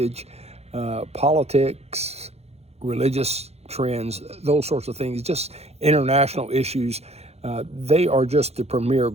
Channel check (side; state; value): left; late; 0.31 ms